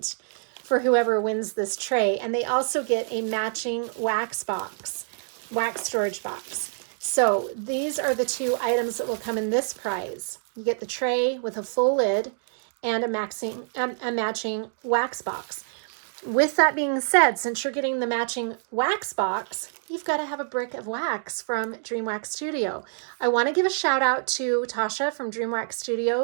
for whoever wins this tray. And they also get a matching wax storage box. So these are the 2 items that will come in this prize. You get the tray with a full lid and a matching wax box. With that being said, since you're getting the matching wax box, you've got to have a brick of wax from Dream Wax Studio. I want to give a shout out to Tasha from Dream Wax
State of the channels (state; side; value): silent; left; digital silence